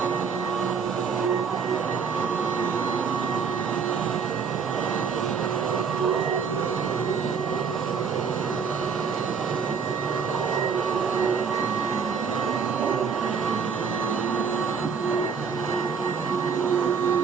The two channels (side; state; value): left; quieter; 6.0 dB